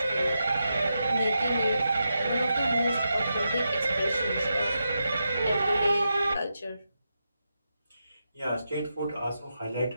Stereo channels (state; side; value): inverted; both; correlation -0.87